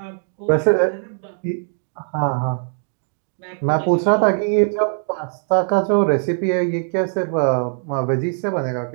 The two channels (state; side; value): silent; left; 65 dB below the other